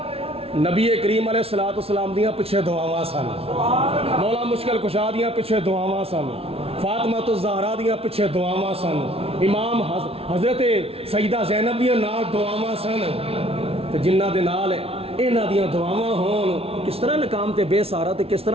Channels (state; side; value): late; left; 0.28 ms